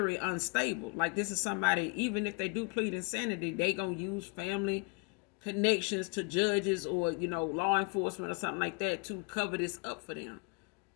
unstable. Like, this is somebody, even if they do plead insanity, they gonna use family connections to judges or, law enforcement or something like that to cover this up for them.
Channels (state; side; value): quieter; right; 31.5 dB